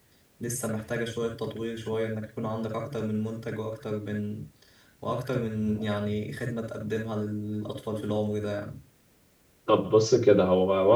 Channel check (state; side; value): identical; both; correlation 1.00